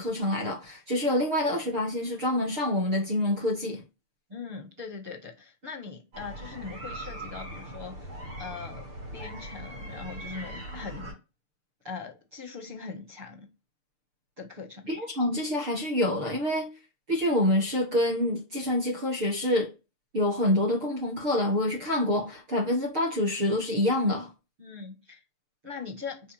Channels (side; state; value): left; late; 6.7 ms